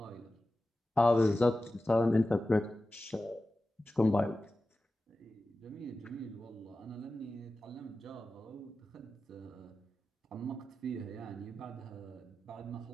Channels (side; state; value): both; normal; correlation 0.94